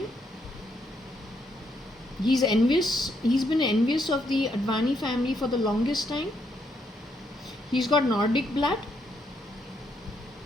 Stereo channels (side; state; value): both; normal; correlation 0.75